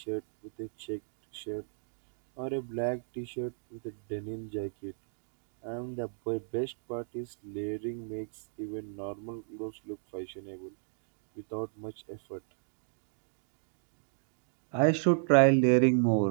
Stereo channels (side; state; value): left; silent; digital silence